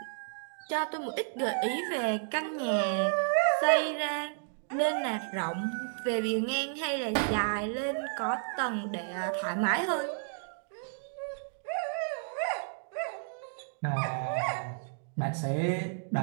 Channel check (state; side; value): silent; left; digital silence